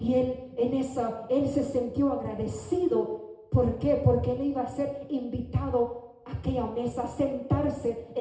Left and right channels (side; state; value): both; identical; correlation 1.00